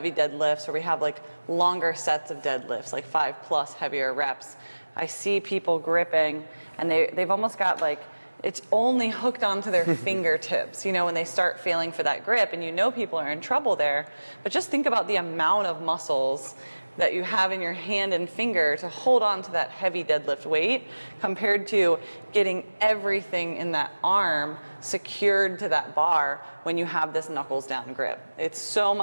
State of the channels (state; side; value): inverted; both; correlation -1.00